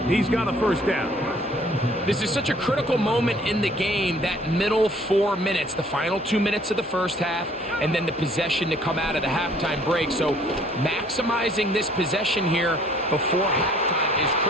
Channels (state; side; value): normal; both; correlation 0.58